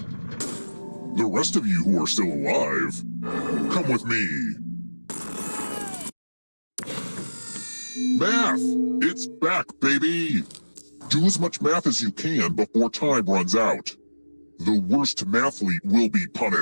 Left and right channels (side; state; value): both; inverted; correlation -1.00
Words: The rest of you who are still alive, come with me. Math! It's back, baby! Do as much math as you can before time runs out. The worst mathlete will be